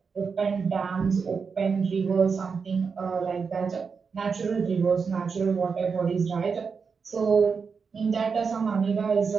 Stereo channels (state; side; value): quieter; left; 5.5 dB